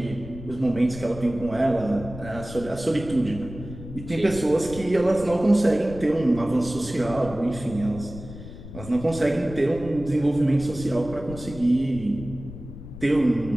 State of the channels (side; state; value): left; noise; rumble, 13 dB below the sound